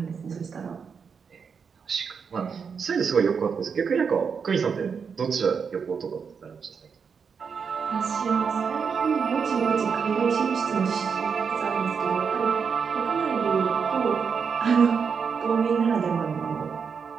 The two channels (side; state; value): left; quieter; 6.1 dB